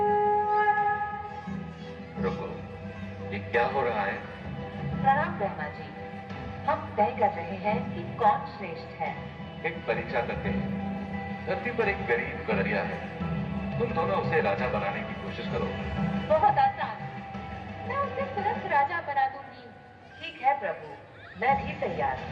रुको, ये क्या हो रहा है? प्रणाम ब्रह्मा जी, हम तय कर रहे हैं कि कौन श्रेष्ठ है। एक परीक्षा करते हैं। धरती पर एक गरीब गडरिया है, तुम दोनों उसे राजा बनाने की कोशिश करो। बहुत आसान, मैं उसे तुरंत राजा बना दूंगी। ठीक है प्रभु, मैं भी तैयार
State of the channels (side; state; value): both; identical; correlation 1.00